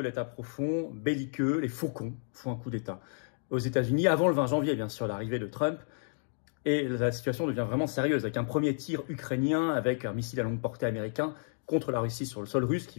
profond, belliqueux. Les faucons font un coup d'État aux États-Unis avant le 20 janvier, bien sûr, l'arrivée de Trump. Et la situation devient vraiment sérieuse avec un premier tir ukrainien avec un missile à longue portée américain contre la Russie sur le sol russe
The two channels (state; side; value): silent; right; digital silence